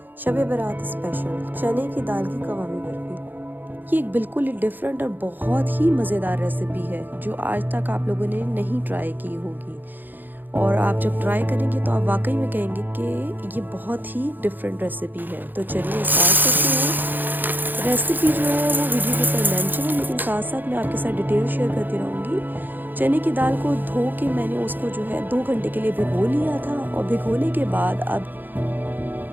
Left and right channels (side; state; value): left; late; 0.088 ms